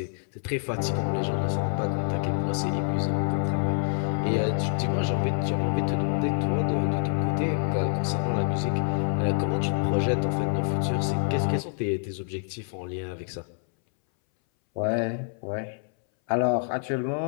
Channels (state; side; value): silent; right; 60 dB below the other